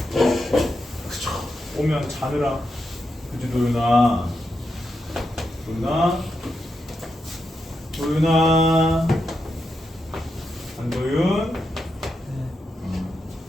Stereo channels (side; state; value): both; normal; correlation 0.85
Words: 그쵸. 오면 자느라. 그치 도윤아. 도윤아. 안도윤.